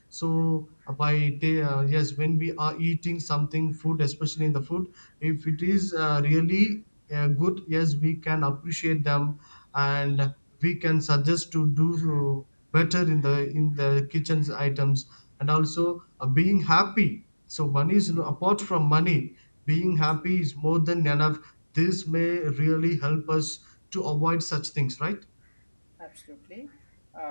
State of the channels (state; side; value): inverted; both; correlation -1.00